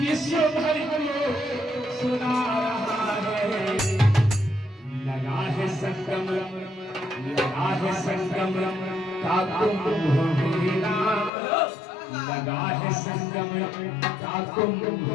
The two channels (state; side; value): drops out; right; at 11.3 s